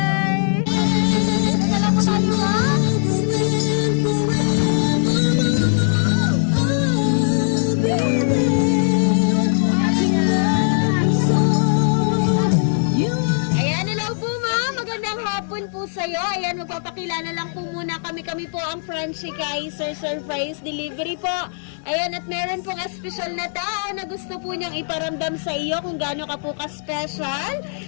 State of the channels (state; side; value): silent; right; digital silence